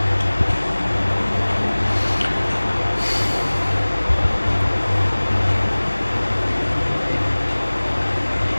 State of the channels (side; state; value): both; inverted; correlation -1.00